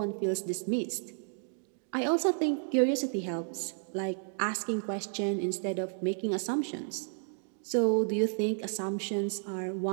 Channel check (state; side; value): silent; left; digital silence